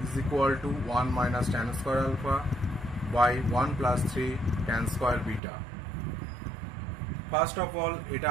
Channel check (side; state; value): left; drops out; at 5.4 s